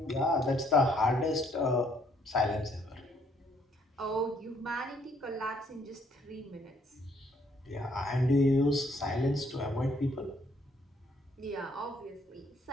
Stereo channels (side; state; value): both; normal; correlation 0.67